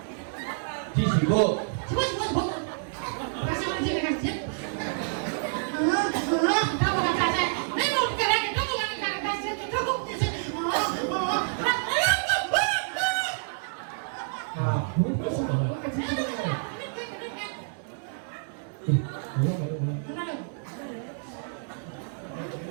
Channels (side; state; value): left; silent; digital silence